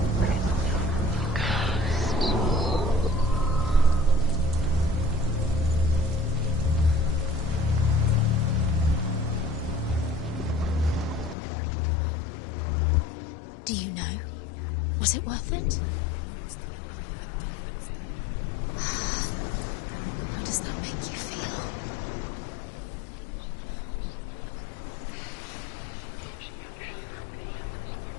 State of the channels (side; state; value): right; drops out; at 11.4 s